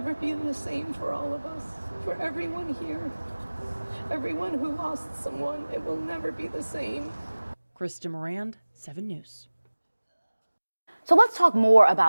be the same for all of us, for everyone here. Everyone who lost someone, it will never be the same. Krista Morand, 7 News. So let's talk more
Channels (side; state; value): both; inverted; correlation -1.00